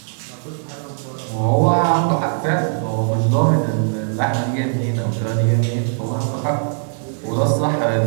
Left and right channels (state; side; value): silent; left; digital silence